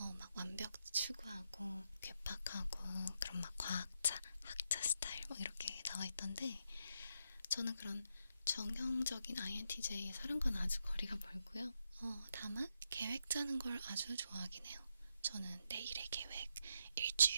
막 완벽 추구하고 괴팍하고 그런 막 과학자, 학자 스타일 막 이렇게 나와 있던데, 저는 그런 정형적인 INTJ의 사람과는 아주 거리가 멀고요. 다만 계획 짜는 걸 아주 좋아하긴 해요. 저는 내일의 계획,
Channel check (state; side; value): inverted; both; correlation -0.80